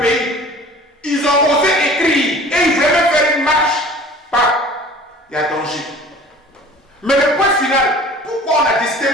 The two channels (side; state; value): both; normal; correlation 0.46